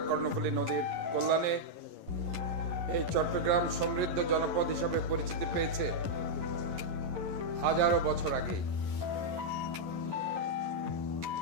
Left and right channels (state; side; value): late; left; 11 ms